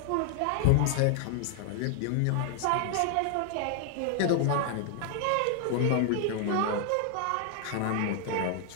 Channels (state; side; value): different; both; correlation 0.00